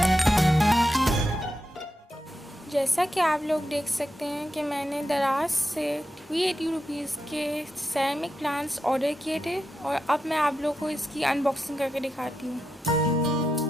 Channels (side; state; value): both; normal; correlation 0.88